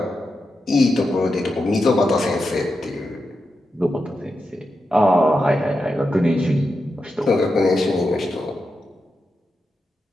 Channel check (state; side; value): normal; both; correlation 0.88